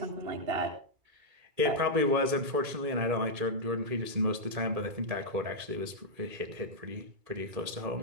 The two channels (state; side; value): late; left; 2.3 ms